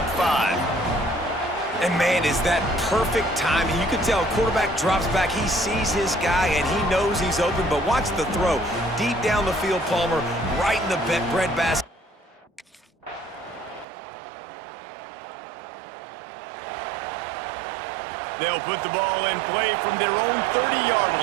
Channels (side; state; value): left; drops out; at 13.9 s